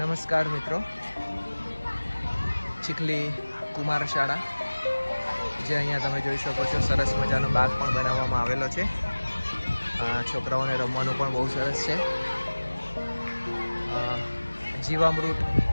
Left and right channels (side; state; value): both; inverted; correlation -1.00